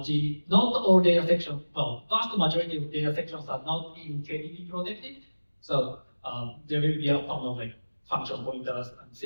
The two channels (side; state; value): both; inverted; correlation -1.00